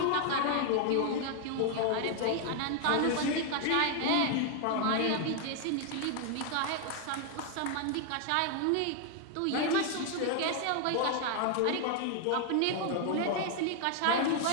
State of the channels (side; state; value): both; different; correlation 0.00